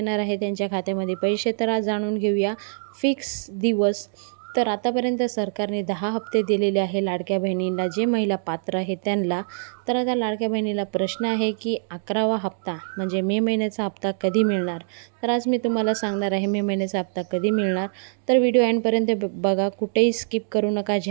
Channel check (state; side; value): silent; left; digital silence